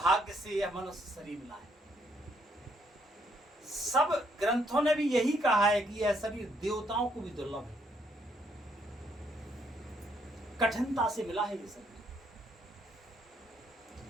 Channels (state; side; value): normal; both; correlation 0.71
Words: से यह मनुष्य शरीर मिला है। सब ग्रंथों ने भी यही कहा है कि यह शरीर देवताओं को भी दुर्लभ है, कठिनता से मिला है ये शरीर।